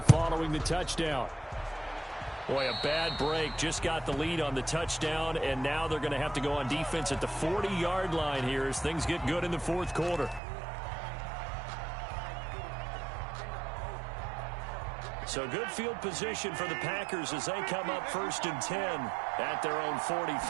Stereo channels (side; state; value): left; drops out; at 10.4 s